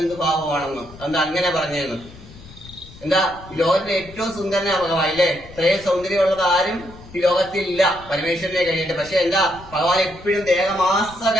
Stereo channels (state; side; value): noise; left; rumble, 19 dB below the sound